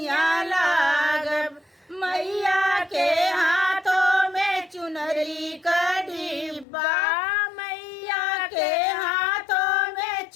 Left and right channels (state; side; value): drops out; right; at 6.7 s